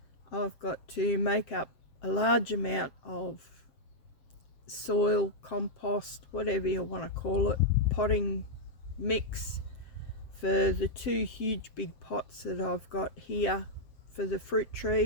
I've got to make up a large amount of soil, compost, whatever you want to call it, potting mix for the two huge big pots that I've got here for the fruit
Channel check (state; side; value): late; right; 7.6 ms